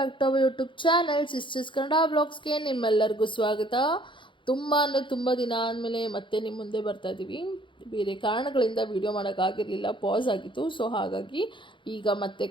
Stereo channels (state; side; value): late; right; 0.24 ms